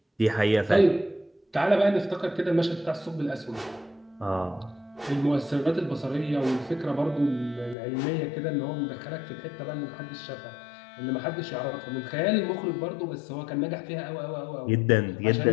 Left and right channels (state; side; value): drops out; right; at 7.8 s